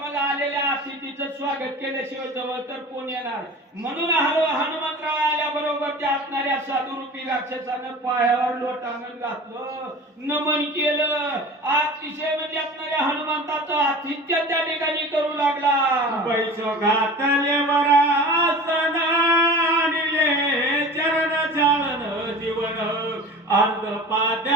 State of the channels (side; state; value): both; normal; correlation 0.37